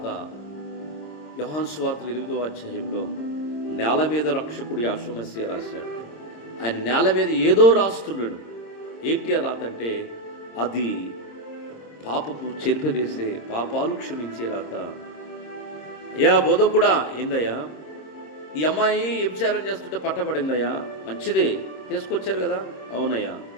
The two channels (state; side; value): late; right; 26 ms